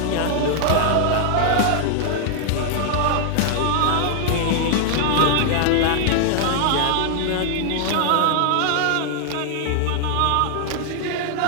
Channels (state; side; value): different; both; correlation 0.00